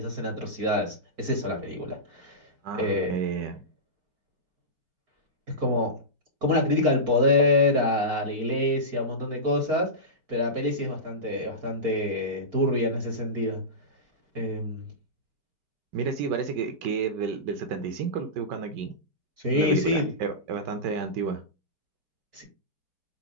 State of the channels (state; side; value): late; left; 4.5 ms